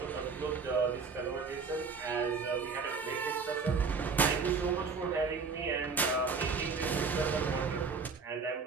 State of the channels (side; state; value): left; quieter; 5.0 dB